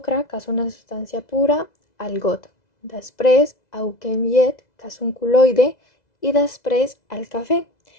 que és una substància pura, al got. Després aboquem llet, que és un col·loide, i després el cafè,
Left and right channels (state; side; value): late; right; 2.0 ms